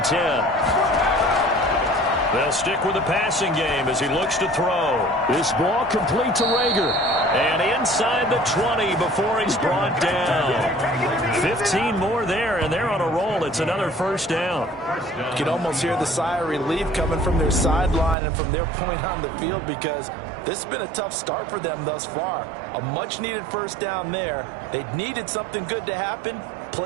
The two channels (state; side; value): drops out; left; at 18.2 s